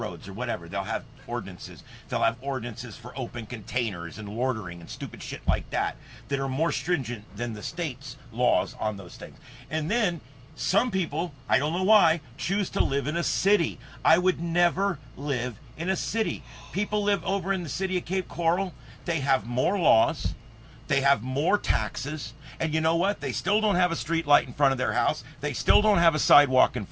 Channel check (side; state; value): both; identical; correlation 1.00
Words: or whatever. They'll have ordinances. They'll have ordinances for open containers and loitering and stupid shit like that that are more stringent than the state's laws on those things. And then some people, I don't know why, choose to live in a city. I would never live in a city. People live over in the city of Cape Coral. They have more laws. They have more taxes. And you know what? They still don't have a street light in front of their house. They still don't have a sidewalk in